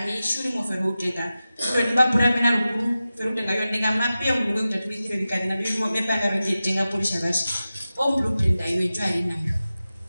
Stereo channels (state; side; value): inverted; both; correlation -0.94